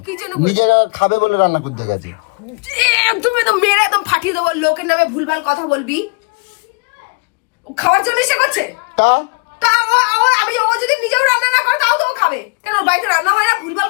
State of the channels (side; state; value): right; quieter; 33.5 dB